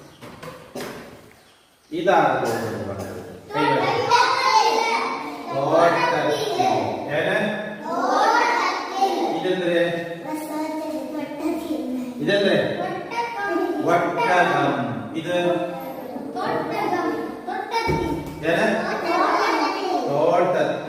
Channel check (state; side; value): identical; both; correlation 1.00